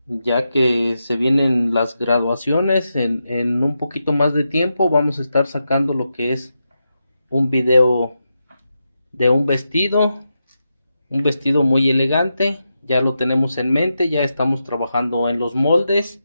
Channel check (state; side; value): inverted; both; correlation -0.87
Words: ya que se vienen las graduaciones. En un poquito más de tiempo vamos a estar sacando lo que es un video de un vestido muy elegante. Ya lo tenemos en mente, ya estamos trabajando en los moldes